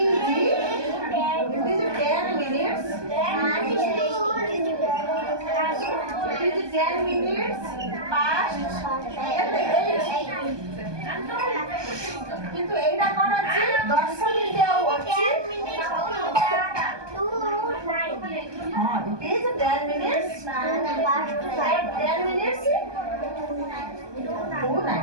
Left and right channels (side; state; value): left; late; 1.2 ms